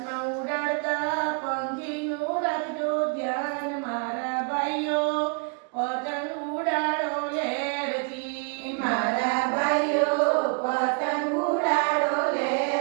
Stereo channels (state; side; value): quieter; left; 37.0 dB